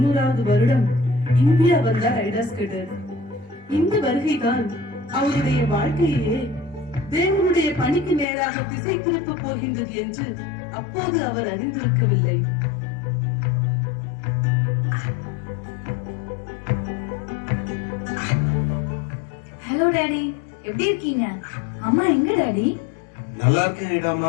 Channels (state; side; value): drops out; right; at 8.2 s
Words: வருடம் இந்தியா வந்தார் ஐடா ஸ்கட்டர். இந்த வருகைதான் அவருடைய வாழ்க்கையே தேவனுடைய பணிக்கு நேராக திசை திருப்ப போகின்றது என்று அப்போது அவர் அறிந்திருக்கவில்லை. ஹலோ டாடி, எப்படி இருக்கீங்க? அம்மா எங்க டாடி? நல்லா இருக்கேன்